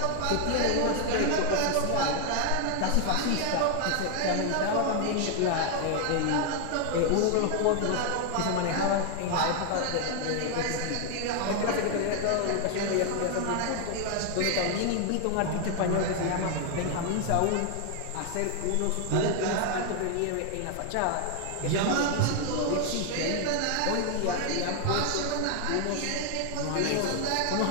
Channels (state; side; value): different; both; correlation 0.00